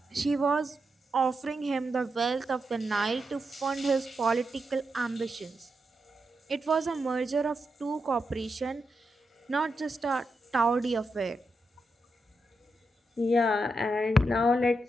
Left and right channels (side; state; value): both; normal; correlation 0.85